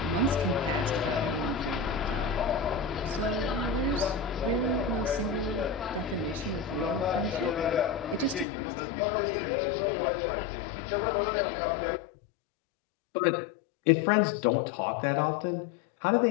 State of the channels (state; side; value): drops out; right; at 8.5 s